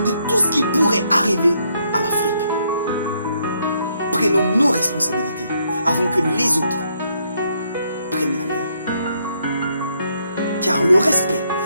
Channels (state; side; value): inverted; both; correlation -0.73